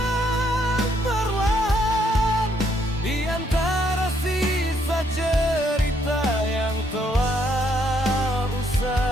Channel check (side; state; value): both; normal; correlation 0.71